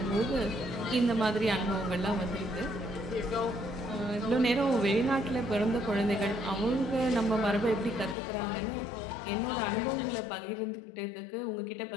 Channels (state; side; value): drops out; right; at 8.2 s